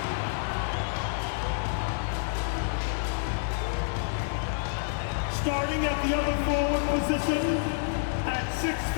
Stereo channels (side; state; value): right; silent; digital silence